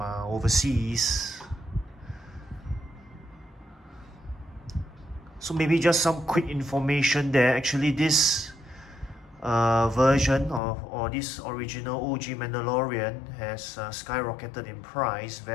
overseas. So maybe just some quick information there. Actually, this version or this original OG Mandalorian has skyrocketed in price,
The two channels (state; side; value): drops out; right; at 10.6 s